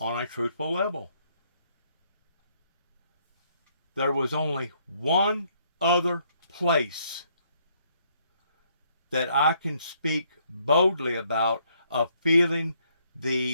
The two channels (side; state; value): both; inverted; correlation -0.69